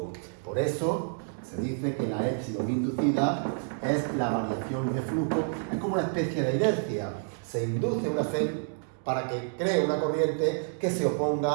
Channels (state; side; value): silent; left; digital silence